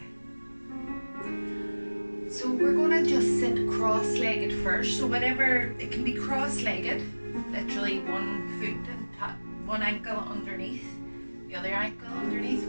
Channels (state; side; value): inverted; both; correlation -1.00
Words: So we're going to just sit cross-legged first. So whenever, it can be cross-legged, literally one foot and one ankle underneath, the other ankle underneath,